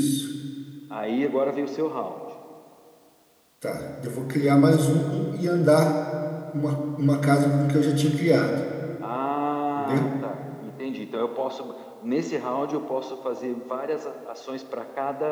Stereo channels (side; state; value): both; identical; correlation 1.00